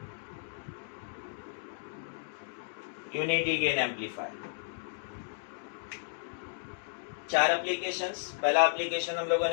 Unity gain amplifier 4 applications. पहला एप्लीकेशन हम लोगों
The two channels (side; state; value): right; silent; digital silence